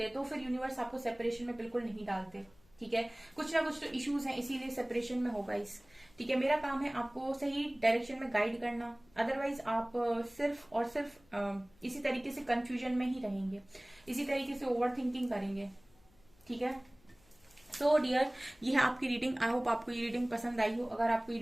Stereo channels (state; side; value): noise; left; hum, 30 dB below the sound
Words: तो फिर यूनिवर्स आपको सेपरेशन में बिल्कुल नहीं डालते, ठीक है। कुछ ना कुछ तो इश्यूज हैं, इसीलिए सेपरेशन में होगा ठीक है। मेरा काम है आपको सही डायरेक्शन में गाइड करना, अदरवाइज आप सिर्फ और सिर्फ इसी तरीके से कंफ्यूजन में ही रहेंगे, इसी तरीके से ओवर थिंकिंग करेंगे, ठीक है। सो डियर, ये है आपकी रीडिंग। आई होप आपको ये रीडिंग पसंद आई हो। अगर आपको ये